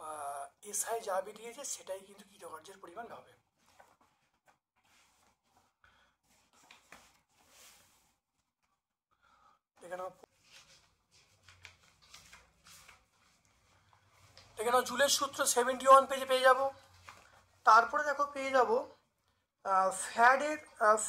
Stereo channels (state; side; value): identical; both; correlation 1.00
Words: এসআই যা বেরিয়েছে সেটাই কিন্তু কৃতকার্যের পরিমাণ হবে। দেখে নাও জুলের সূত্র 71 পেজে পেয়ে যাব। তারপরে দেখো পেয়ে যাব